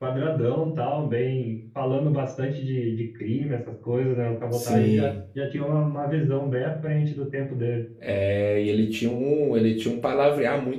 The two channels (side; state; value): both; identical; correlation 1.00